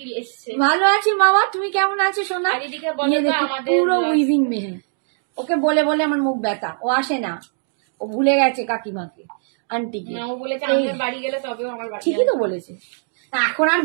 এসছে। ভালো আছি মামা, তুমি কেমন আছো সোনা? আর এদিকে বলো তো আমাদের পুরো উইভিং মে হ্যাঁ, ওকে বলে বলে আমার মুখ ব্যথা, ও আসে না, ও ভুলে গেছে কাকিমাকে, আন্টিকে। না ও বলেছে আমাদের বাড়ি গেলে তবেও আমার বাড়ি ঠিকই তো বলেছে, এখন আর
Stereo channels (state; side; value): silent; left; digital silence